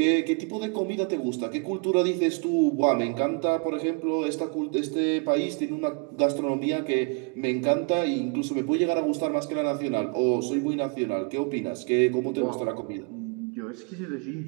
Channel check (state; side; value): quieter; left; 35.7 dB